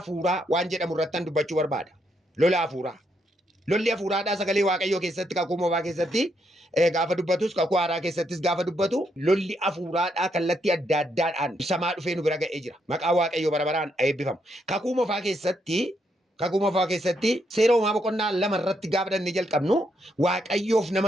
waan jedhamu irratti dubbachuu barbaada. Lola afuuraa. Lolli afuuraadhaa sagalee waaqayyoo keessatti kakuu moofaa keessatti gaafa dubbatus kakuu haaraa keessattis gaafa dubbatu lolli afuuraadhaa kallattii adda addaadhaan ibsamaa dhufee nu bira ga'ee jira. Maqaa waaqayyoo bara baraan eebbifamu. Kakuu moofaa keessatti seera uumaa boqonnaa 2 irratti gaafa dhannee jalqabnu waaqayyoof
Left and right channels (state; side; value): normal; both; correlation 0.77